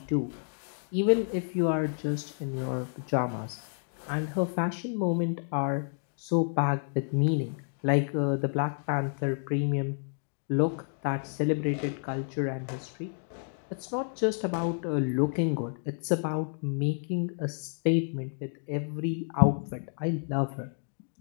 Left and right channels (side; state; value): right; silent; 58 dB below the other